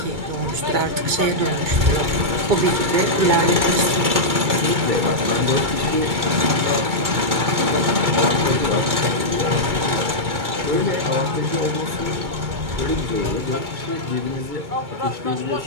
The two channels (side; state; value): left; late; 2.2 ms